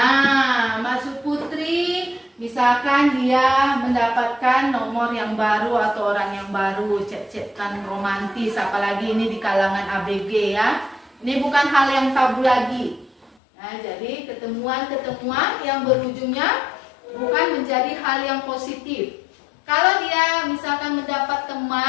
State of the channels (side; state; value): right; drops out; at 13.4 s